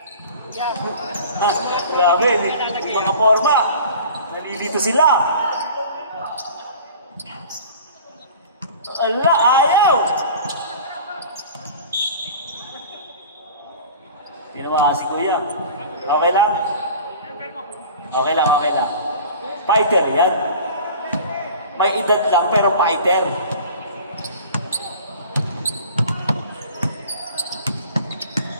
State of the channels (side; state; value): both; inverted; correlation -0.41